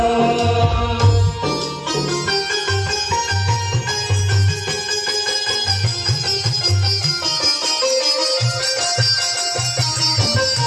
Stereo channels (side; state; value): both; identical; correlation 1.00